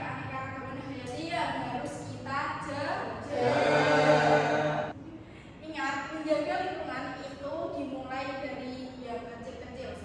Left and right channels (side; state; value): both; identical; correlation 1.00